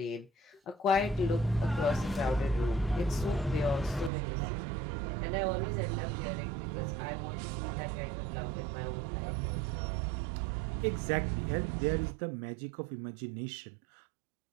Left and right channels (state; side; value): drops out; left; at 4.1 s